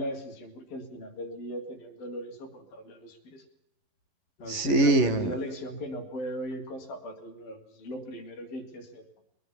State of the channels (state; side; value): late; right; 11 ms